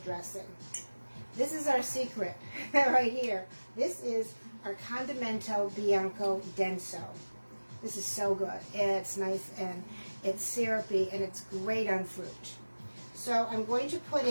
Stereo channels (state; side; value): inverted; both; correlation -1.00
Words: dressing. This is our secret right here. This is our Condimento Bianco Denso. This is so good. It's nice and it's syrupy and it's great on fruit. So I'm going to put